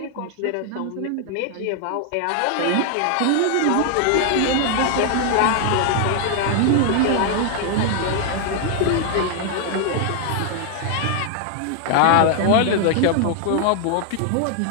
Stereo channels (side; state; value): both; different; correlation 0.00